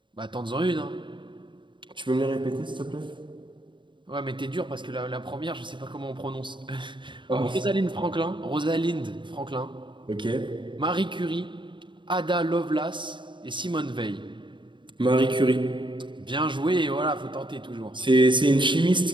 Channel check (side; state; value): left; late; 0.23 ms